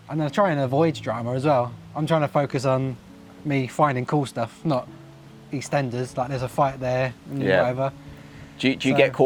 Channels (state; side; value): identical; both; correlation 1.00